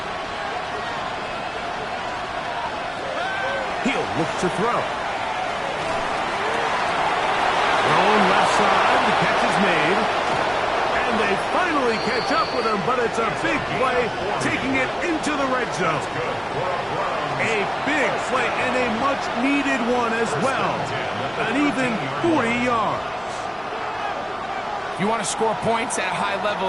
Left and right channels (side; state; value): both; identical; correlation 1.00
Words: He'll look to throw. Thrown left side, the catch is made. And they finally catch up with him, but it's a big play, taking it into the red zone. A big play and a much-needed one as well. An even 40 yards. If you want to score points at a high level